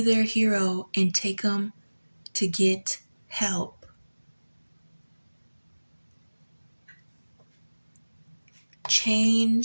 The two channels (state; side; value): inverted; both; correlation -1.00